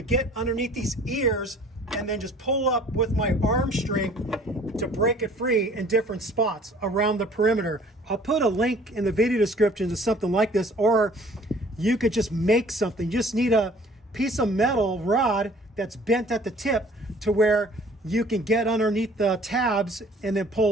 get underneath these ears and then just pull up with my arm strength to break it free in different spots around the perimeter. I'll put a link in the video description to something like this, or you could just make something. You just need a piece of metal rod that's bent at the tip to where you can get underneath the tabs and then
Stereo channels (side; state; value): both; normal; correlation 0.53